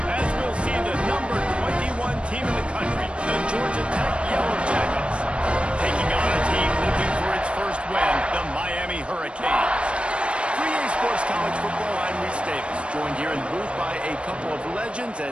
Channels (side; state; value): left; late; 0.058 ms